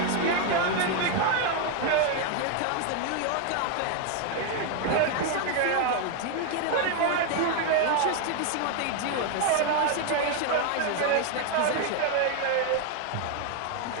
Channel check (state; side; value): different; both; correlation 0.01